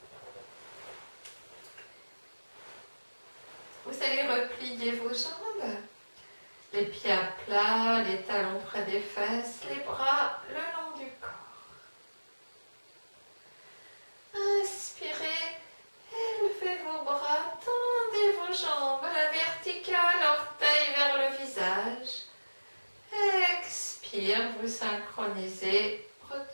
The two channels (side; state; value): both; inverted; correlation -1.00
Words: Vous allez replier vos jambes, les pieds à plat, les talons près des fesses, les bras le long du corps. Inspirez, élevez vos bras, tendez vos jambes à la verticale, orteils vers le visage. Expire, vous synchronisez,